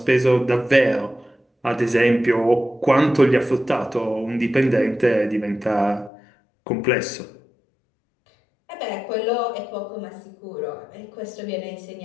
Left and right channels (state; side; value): drops out; right; at 6.1 s